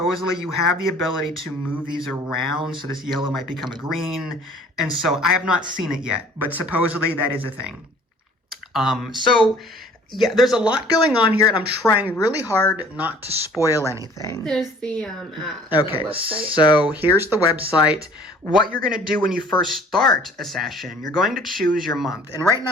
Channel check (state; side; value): normal; both; correlation 0.52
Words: you have the ability to move these around. So this yellow might become a green. And so I have not seen it yet, but supposedly that is a thing. So yeah, there's a lot going on here, and I'm trying really hard not to spoil anything. There's the okay, website. So here's the website. What you're going to do when you first start a session, you're going to choose your month. And right